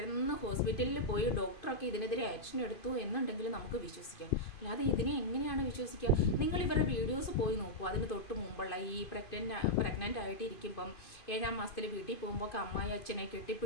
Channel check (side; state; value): right; late; 2.5 ms